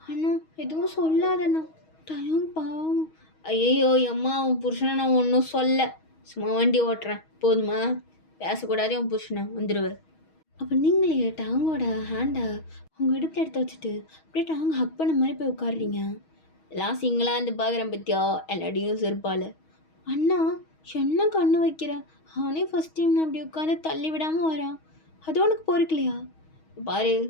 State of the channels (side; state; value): right; late; 6.3 ms